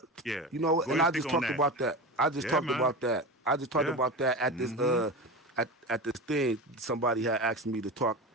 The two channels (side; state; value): both; normal; correlation 0.26